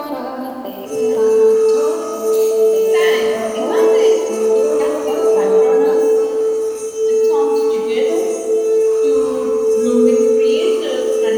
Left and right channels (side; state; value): both; identical; correlation 1.00